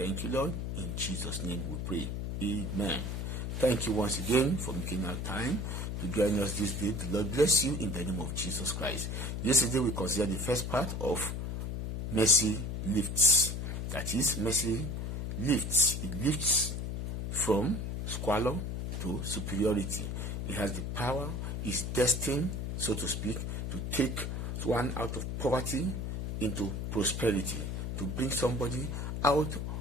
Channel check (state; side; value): noise; left; hum, 3 dB below the sound